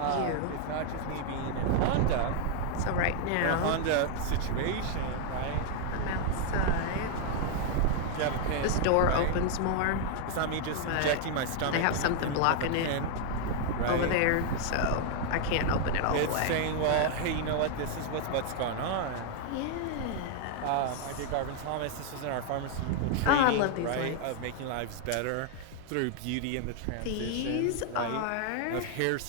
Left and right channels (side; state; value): both; different; correlation 0.00